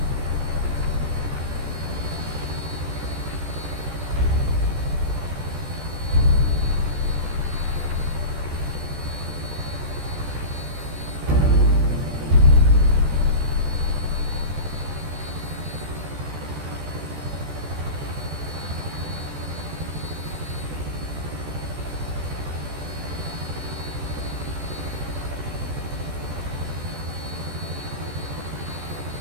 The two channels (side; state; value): left; late; 14 ms